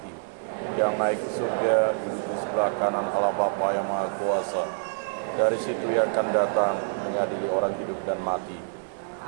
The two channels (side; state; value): left; silent; digital silence